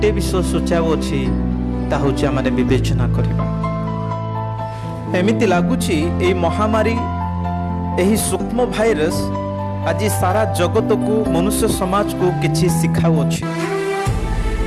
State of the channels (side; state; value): both; identical; correlation 1.00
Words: विषय सूचाओ अछि, ता होछि आमाने विवेचना करिबा। एमिति लागुछि ए महामारी, एही सूक्ष्म भाइरस आज सारा जगत को, मनुष्य समाज को किछि शिखाउ अछि।